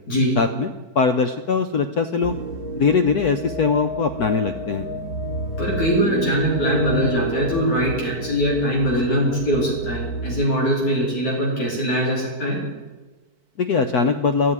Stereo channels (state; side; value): late; right; 4.5 ms